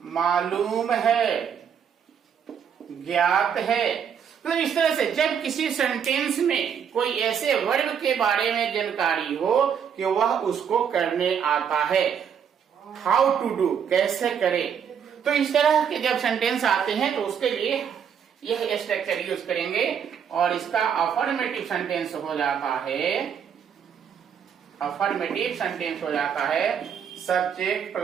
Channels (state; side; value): quieter; left; 7.7 dB